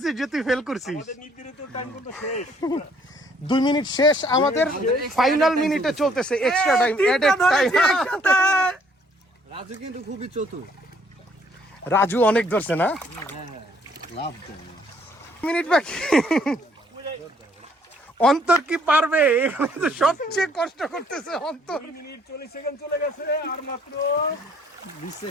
যে তুই ফেল করছিস? আমাদের নির্ধারিত টাইম কিন্তু শেষ। 2 মিনিট শেষ আমাদের। ফাইনাল মিনিটে চলতেছে extra time, added time. Raju কিন্তু খুবই চতুর। রাজু অনেক ধরছে না? মিনিট বাকি। অন্তর কি পারবে? এখানে তো সবচেয়ে কষ্ট করতেছে অন্তর। 2 মিনিট 40 সেকেন্ড চলে গেছে, আর মাত্র 20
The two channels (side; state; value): both; normal; correlation 0.64